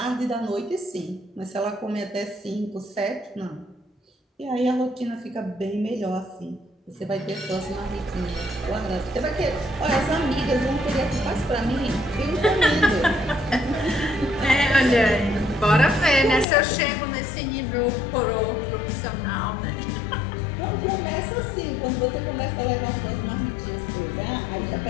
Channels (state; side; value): drops out; right; at 16.4 s